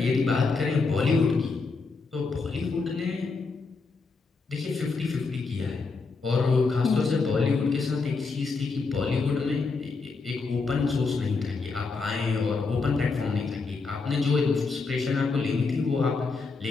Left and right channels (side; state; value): right; quieter; 4.3 dB